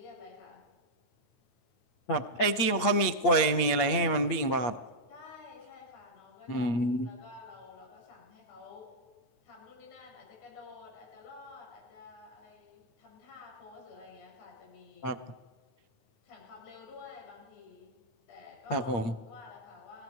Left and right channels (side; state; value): right; late; 8.6 ms